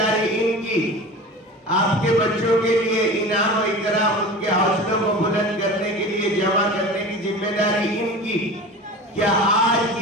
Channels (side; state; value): both; normal; correlation 0.34